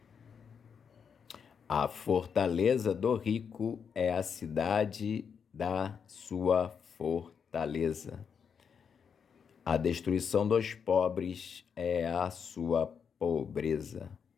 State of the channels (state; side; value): quieter; right; 6.8 dB